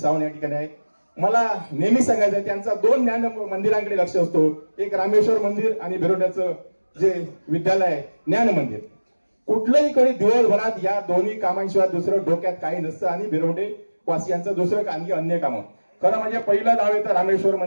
या ठिकाणी आहे. मला नेहमी सांगायचं आहे, त्यांचा 2 ज्ञान मंदिरांकडे लक्ष असतो, एक रामेश्वर मंदिर आणि भिरोंड्याचं जे विद्यालय आहे ज्ञान मंदिर. कुठलंही कधी दिवसभरात या दोन्ही कामांशिवाय दुसरं डोक्यात काही नसतं आणि भिरोंडे वासियांचं दुसरं काही अन्य कामं. खरं म्हणजे पहिलं नाव येतं रामेश्वर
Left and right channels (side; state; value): both; inverted; correlation -1.00